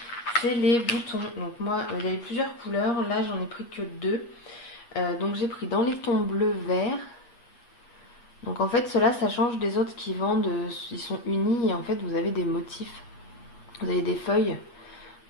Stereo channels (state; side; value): late; right; 8.4 ms